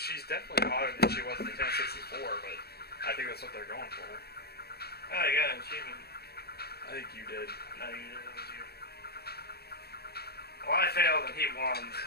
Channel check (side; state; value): right; late; 0.46 ms